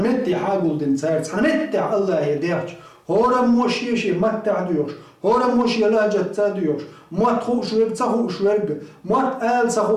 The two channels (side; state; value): both; identical; correlation 1.00